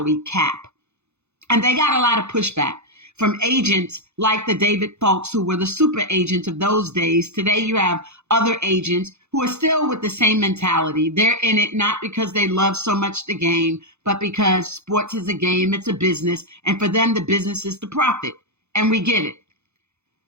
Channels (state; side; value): late; left; 0.81 ms